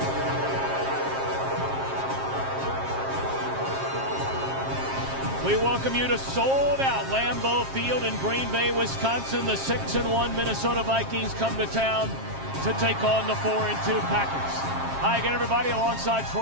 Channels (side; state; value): left; late; 7.5 ms